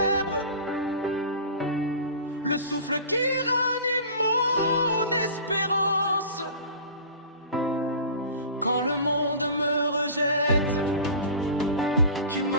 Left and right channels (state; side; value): inverted; both; correlation -0.37